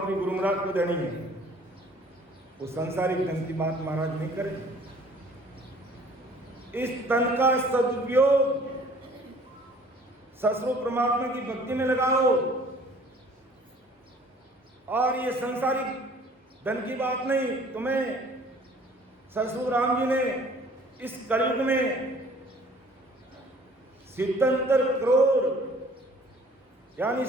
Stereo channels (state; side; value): normal; both; correlation 0.53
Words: गुरु महाराज को देनी है। वो संसारिक धन की बात महाराज नहीं करें। इस तन का सदुपयोग ससुर परमात्मा की भक्ति में लगाओ। और ये संसारिक धन की बात नहीं, तुम्हें ससुर राम जी ने इस कलयुग में 77 करोड़ यानी